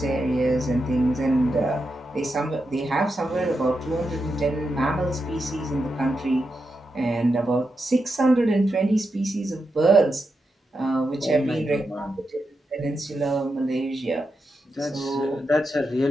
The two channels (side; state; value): both; normal; correlation 0.87